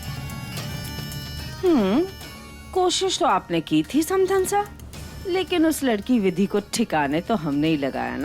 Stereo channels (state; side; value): identical; both; correlation 1.00